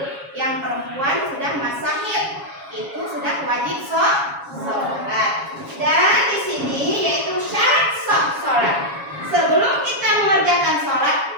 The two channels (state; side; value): late; left; 7.3 ms